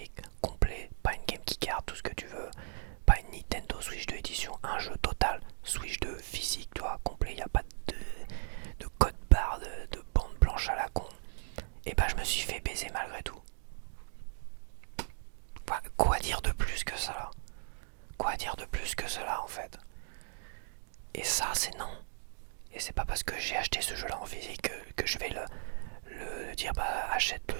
complet, pas une game qui card, tout ce que tu veux, pas une Nintendo Switch 2 édition, un jeu total Switch 2 physique, tu vois, complet, il n'y a pas de code barre, de bande blanche à la con. Et bah je me suis fait baiser malgré tout. Enfin, quoi dire de plus que ça? Quoi dire de plus que cela en fait? Et ça c'est non. Et c'est pas parce que j'ai acheté ce jeu là en physique que je vais le dire bah achète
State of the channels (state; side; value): silent; left; digital silence